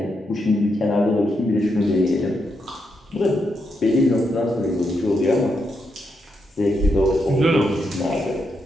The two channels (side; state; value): both; normal; correlation 0.82